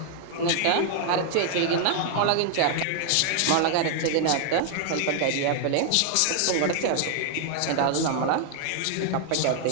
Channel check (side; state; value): both; different; correlation 0.00